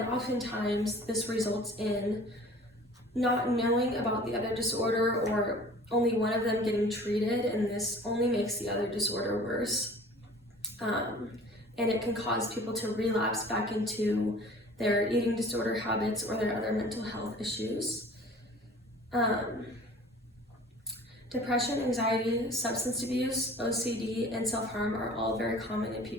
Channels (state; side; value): normal; both; correlation 0.46